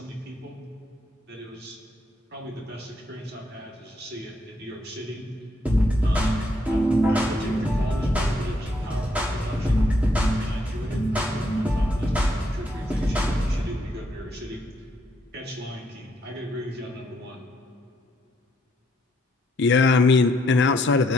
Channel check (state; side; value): normal; both; correlation 0.73